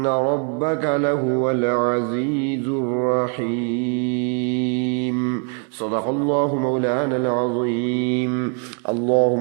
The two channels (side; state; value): left; quieter; 39.6 dB